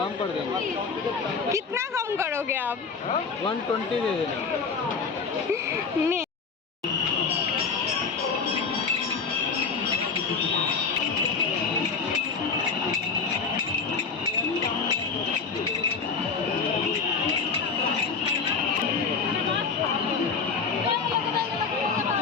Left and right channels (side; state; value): right; quieter; 5.2 dB